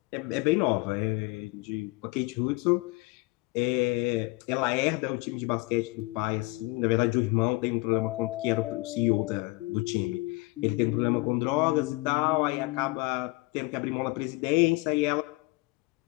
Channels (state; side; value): quieter; right; 24.6 dB